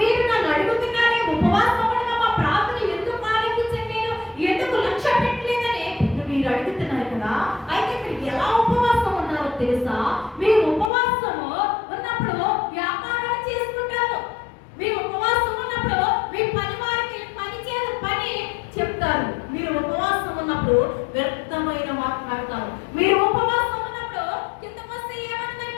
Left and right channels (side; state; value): right; drops out; at 10.9 s